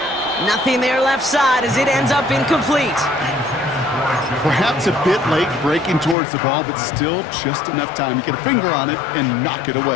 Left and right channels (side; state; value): right; drops out; at 6.2 s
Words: Nothing there left side as it ends up incomplete. Perhaps a bit late breaking towards the ball, but still just enough time to get a finger on it and knock it